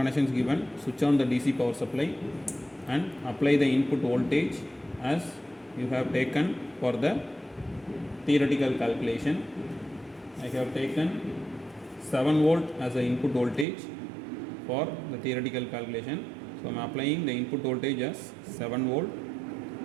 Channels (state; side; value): drops out; left; at 13.7 s